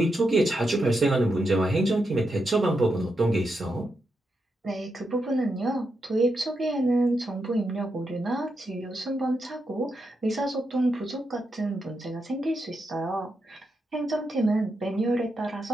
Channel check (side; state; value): both; normal; correlation 0.84